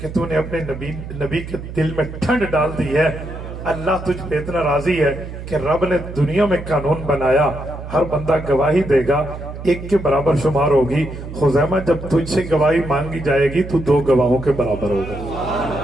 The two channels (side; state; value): right; noise; hum, 10 dB below the sound